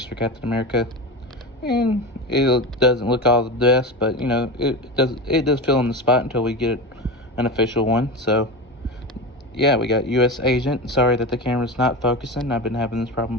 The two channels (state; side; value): normal; both; correlation 0.24